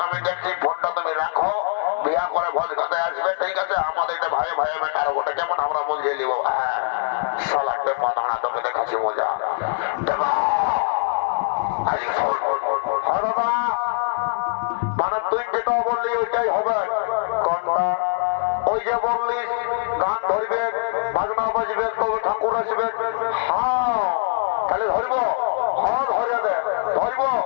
আমি দেখছি, ফোনটা তুমি রাখো, বিয়া করে ভোজ খেতে আসবে। ঠিক আছে আমাদের এটা ভাই ভাই মেটার ওটা কেমন আমরা বুঝিয়ে নিব। সালা টেপা দাঁড়া, তোকে দেখাচ্ছি মজা। মানে তুই যেটা বললি ওইটাই হবে। কোনটা? ওই যে বললি গান ধরবে, বাজনা বাজবে, তবে ঠাকুর আসবে। হ্যাঁ তাহলে ধরব। হ্যাঁ ধরিয়া দে, ধরব,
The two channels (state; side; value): silent; right; digital silence